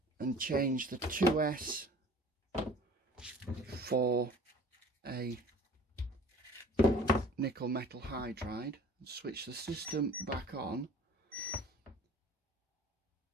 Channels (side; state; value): both; normal; correlation 0.46